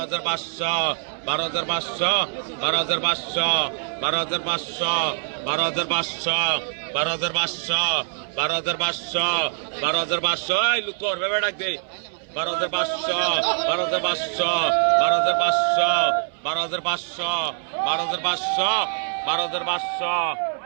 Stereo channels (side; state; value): left; silent; 61 dB below the other